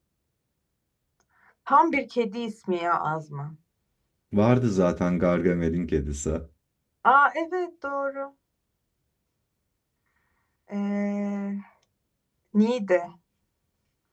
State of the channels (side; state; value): both; identical; correlation 1.00